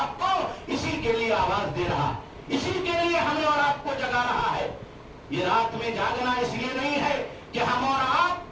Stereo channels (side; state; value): both; identical; correlation 1.00